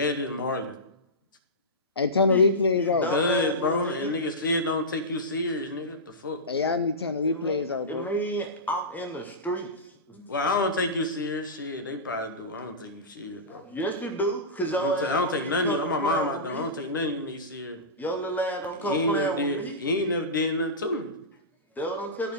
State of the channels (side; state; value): both; normal; correlation -0.17